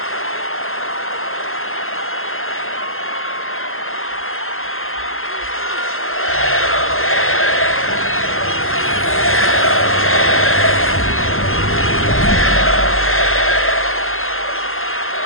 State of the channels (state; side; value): late; right; 0.61 ms